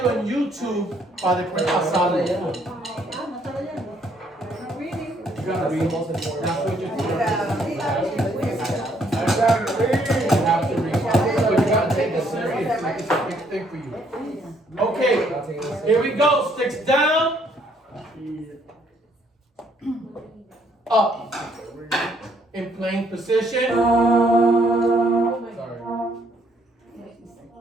en YouTube para después pasarlo. You gotta read. That's what you're doing. I got it reading. You have to read. But you gotta take it serious. Like it's a big thing for you. Okay, here we go. Sticks down. Up. In plank position. Sorry.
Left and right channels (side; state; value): both; normal; correlation 0.67